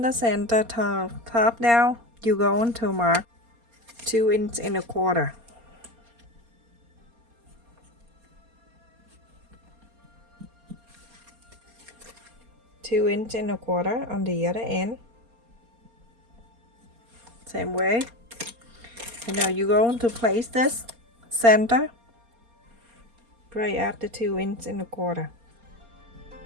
the center top down, you're going to mark 2 inch and 1/4. Two inch and 1/4 on the other end. Same way. And now you're going to place this center right at the 2 inch and 1/4.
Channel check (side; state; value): left; late; 4.3 ms